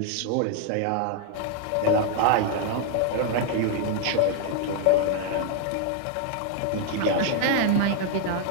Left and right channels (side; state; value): both; different; correlation 0.00